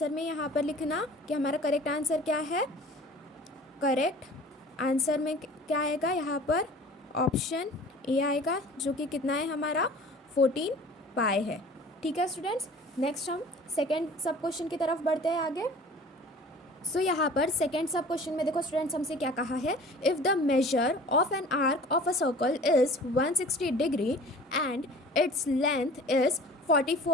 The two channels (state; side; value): normal; both; correlation 0.45